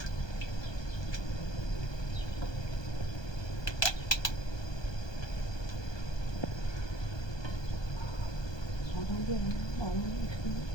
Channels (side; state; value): right; late; 1.2 ms